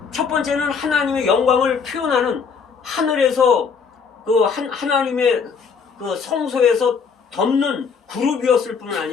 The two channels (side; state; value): right; quieter; 5.8 dB